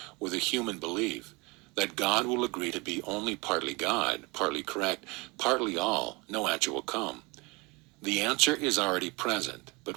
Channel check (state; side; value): quieter; left; 26.5 dB